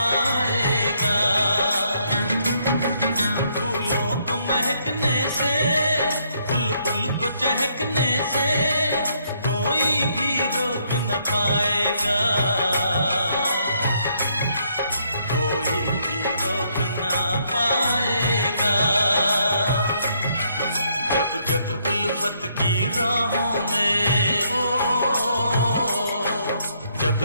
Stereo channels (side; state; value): both; inverted; correlation -0.71